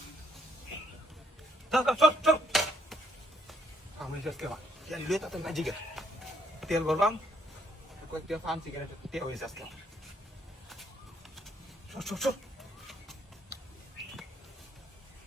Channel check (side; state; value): both; normal; correlation 0.70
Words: চল চল আমি আজকে তেল লইতে তো না জিগে তেল ভরলাম কয়েকটা ফান সিগারেট তেল হয়েছে আজকে চল